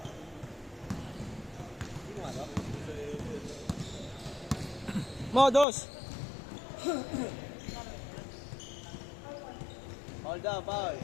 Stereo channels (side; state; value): right; drops out; at 5.7 s